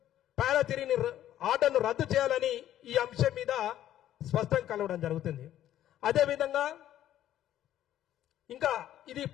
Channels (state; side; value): quieter; right; 12.2 dB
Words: పారా 3ని ఆర్డర్ను రద్దు చేయాలని ఈ అంశం మీద స్పష్టంగా కలవడం జరుగుతుంది. అదేవిధంగా ఇంకా ఇది